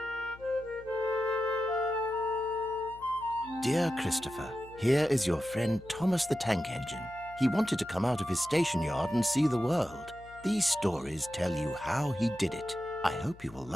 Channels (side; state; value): left; noise; hum, 21 dB below the sound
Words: Dear Christopher, here is your friend Thomas the Tank Engine. He wanted to come out of his station yard and see the world. These stories tell you how he did it. I hope you will